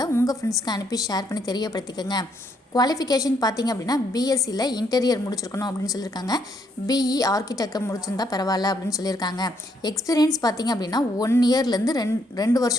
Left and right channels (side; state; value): both; normal; correlation 0.72